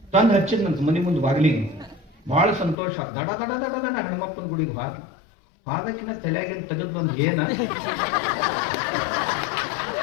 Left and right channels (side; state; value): right; drops out; at 2.8 s